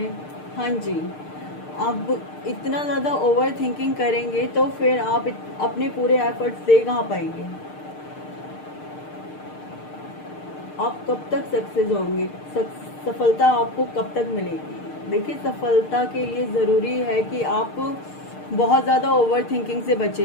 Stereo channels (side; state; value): right; late; 6.6 ms